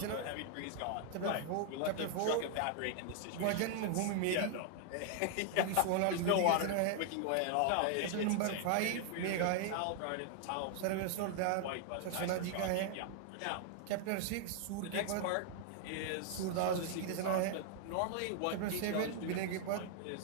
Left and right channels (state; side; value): different; both; correlation 0.00